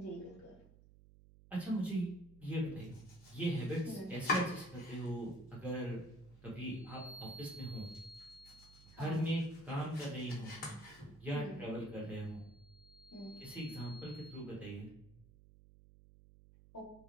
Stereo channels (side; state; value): right; noise; hum, 21 dB below the sound